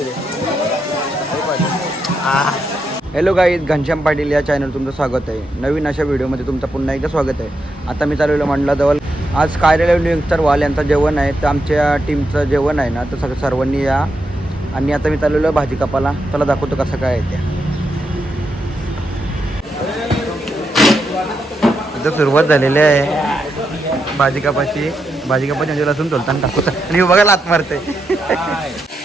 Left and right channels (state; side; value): normal; both; correlation 0.83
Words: हॅलो गाईज, घनश्याम पाटील या चॅनल तुमचं स्वागत आहे. नवीन अशा व्हिडिओमध्ये तुमचं पुन्हा एकदा स्वागत आहे. आता मी चालवलं मंडलाजवळ. आज कार्यालय नियुक्तर वाल यांचं जेवण आहे, तर आमच्या टीमचं जेवण आहे ना, तर सर्वांनी या. आणि आता मी चालवलं भाजी कापाला. त्याला दाखवतो कसं काय आहे त्या. इथं सुरुवात झालेली आहे भाजी कापाची. भाजी कापाची म्हणजे लसूण तोलताना टाकतो आणि बघा लात मारते.